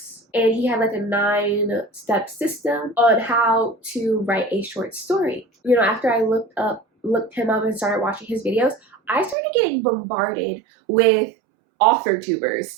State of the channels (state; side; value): drops out; left; at 9.3 s